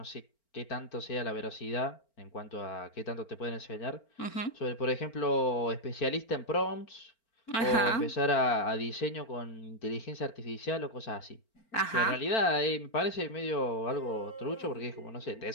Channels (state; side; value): late; right; 4.4 ms